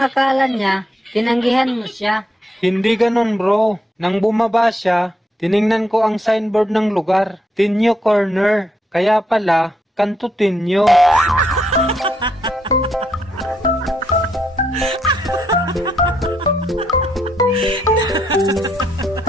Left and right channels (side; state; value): both; normal; correlation 0.77